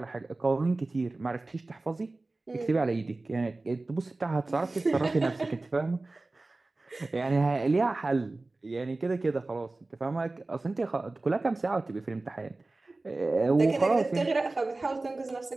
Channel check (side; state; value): left; quieter; 3.2 dB